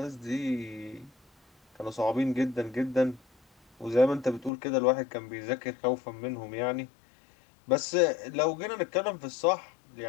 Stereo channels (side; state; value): right; drops out; at 4.5 s